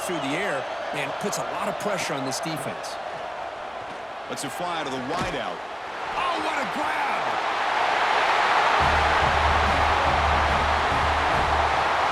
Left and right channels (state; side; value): identical; both; correlation 1.00